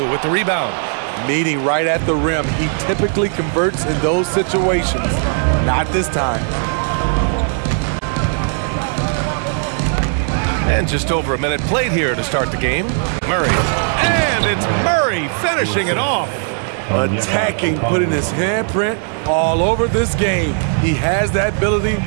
with the rebound. Meeting right at the rim. He typically converts in those situations. Not this time. And just over a minute played here to start the game. Murray. And it's Murray finishing it off. Attacking, putting his handprint all over this game. He has that ability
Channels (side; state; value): left; silent; 56 dB below the other